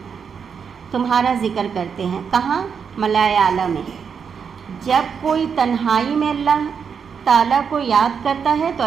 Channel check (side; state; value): left; quieter; 6.6 dB